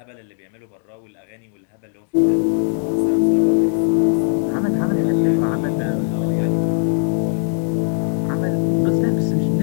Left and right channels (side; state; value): right; silent; 61 dB below the other